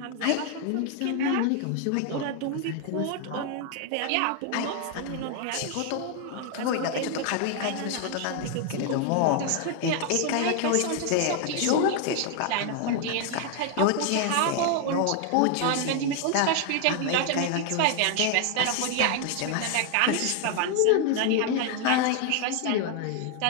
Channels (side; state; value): both; different; correlation 0.00